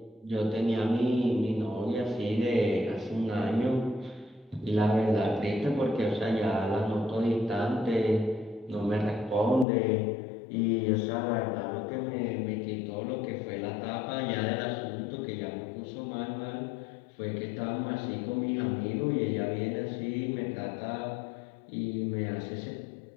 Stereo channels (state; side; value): drops out; right; at 9.7 s